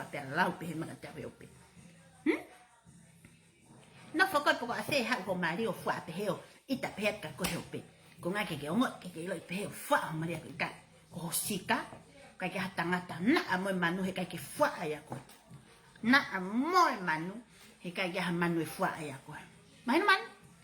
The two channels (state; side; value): identical; both; correlation 1.00